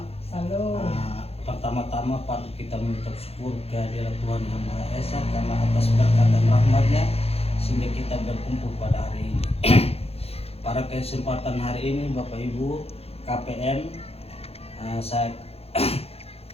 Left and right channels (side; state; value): right; late; 0.29 ms